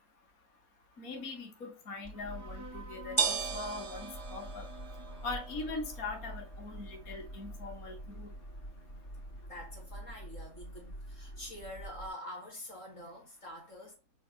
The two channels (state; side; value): late; right; 3.7 ms